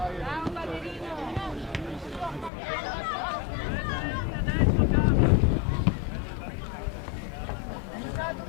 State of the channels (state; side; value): drops out; right; at 2.5 s